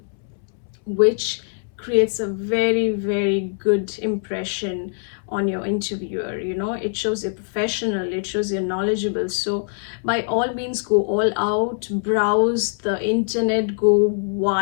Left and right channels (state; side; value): silent; right; 64 dB below the other